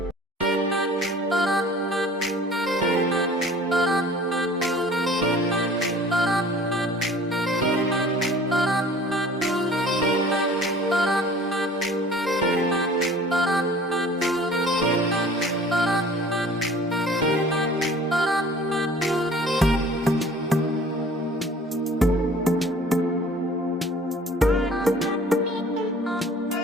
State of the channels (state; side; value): normal; both; correlation 0.49